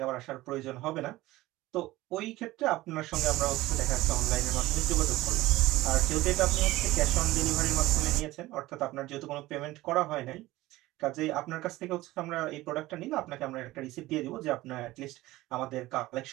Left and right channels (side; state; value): left; quieter; 17.9 dB